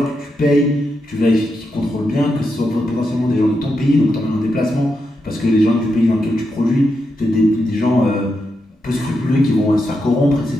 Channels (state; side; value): normal; both; correlation 0.85